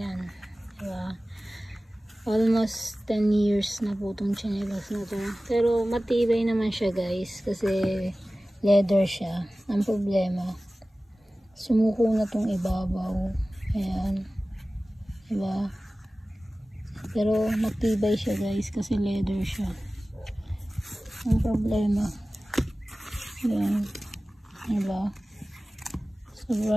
diba? Almost 10 years na po itong tsinelas na to. Pero matibay naman siya guys, kasi leather siya. Ang problema, sumuko na tong ibabaw. Ayan, diba? Pero matibay siya guys, kasi leather siya. Ang problema, ayan, diba?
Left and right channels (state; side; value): normal; both; correlation 0.97